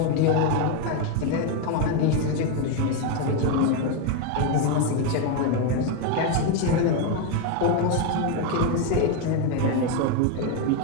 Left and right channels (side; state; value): both; different; correlation 0.02